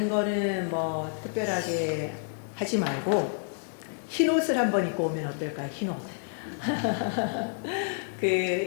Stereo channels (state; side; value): silent; right; digital silence